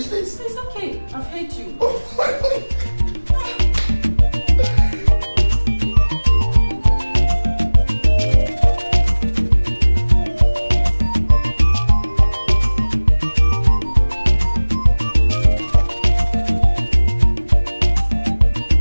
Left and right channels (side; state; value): both; inverted; correlation -1.00